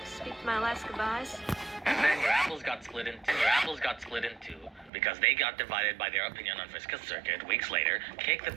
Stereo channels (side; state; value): left; drops out; at 4.9 s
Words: speak my last goodbyes. And then your apples got split in two because they got divided by their opinion on Vriska's circuit. Weeks later, Cake the